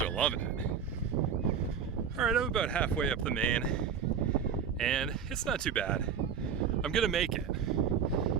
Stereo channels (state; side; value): quieter; left; 7.2 dB